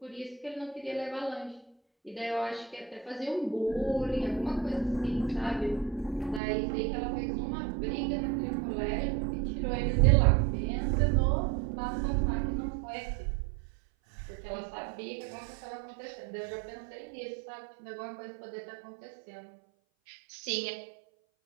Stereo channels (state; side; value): drops out; left; at 6.4 s